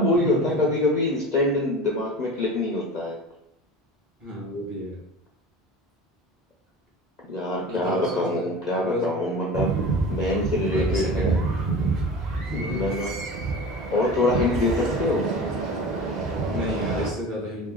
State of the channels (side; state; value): both; normal; correlation 0.35